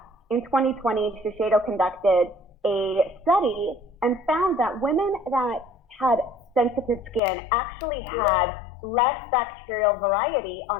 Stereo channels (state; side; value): drops out; right; at 7.2 s